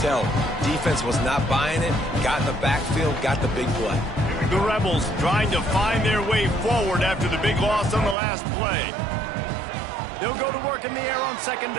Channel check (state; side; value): drops out; left; at 8.2 s